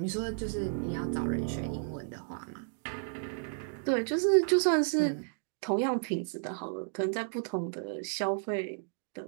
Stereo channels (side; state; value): left; silent; digital silence